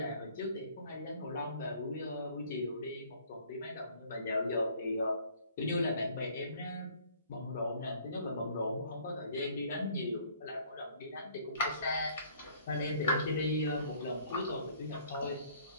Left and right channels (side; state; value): both; inverted; correlation -0.57